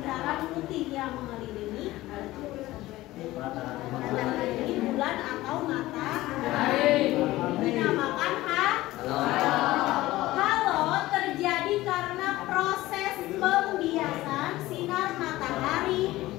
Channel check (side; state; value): right; quieter; 17.3 dB